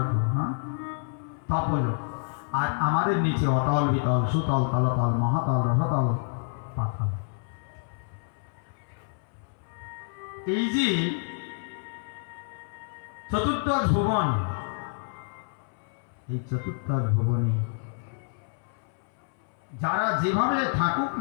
হ্যাঁ, তপলোক। আর আমাদের নিচে অতল, বিতল, সুতল, তলতল, মহাতল, রসতল, পাতাল। এই যে চতুর্দশ ভুবন, এই চতুর্দশ ভুবনে যারা যেভাবে থাকুক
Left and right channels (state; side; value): silent; right; 59 dB below the other